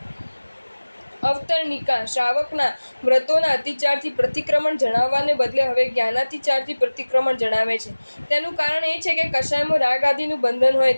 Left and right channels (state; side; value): inverted; both; correlation -1.00